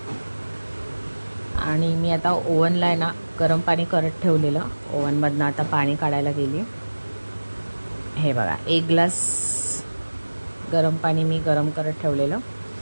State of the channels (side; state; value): both; inverted; correlation -1.00